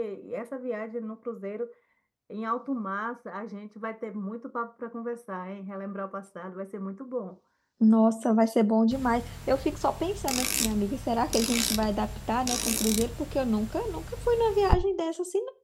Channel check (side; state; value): both; identical; correlation 1.00